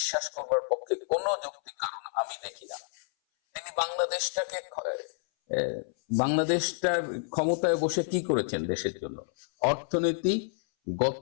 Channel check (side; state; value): right; silent; 58 dB below the other